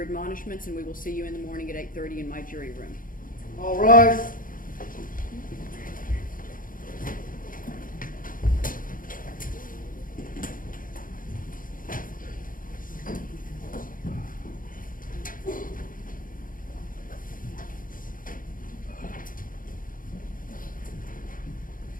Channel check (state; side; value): late; right; 0.40 ms